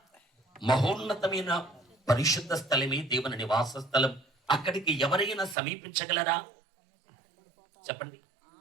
మహోన్నతమైన పరిశుద్ధ స్థలమే దేవుని నివాస స్థలం. అక్కడికి ఎవరైనా సమీపించగలరా? చెప్పండి.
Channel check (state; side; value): drops out; left; at 5.6 s